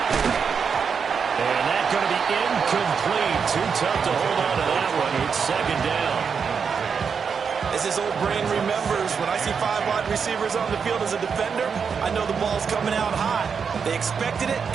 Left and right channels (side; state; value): left; quieter; 6.2 dB